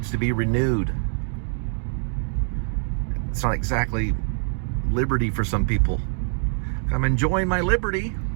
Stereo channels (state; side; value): silent; left; 57 dB below the other